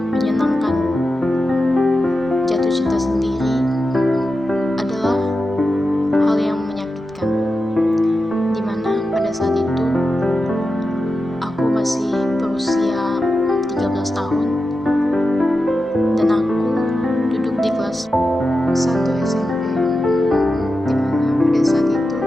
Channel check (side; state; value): both; normal; correlation 0.91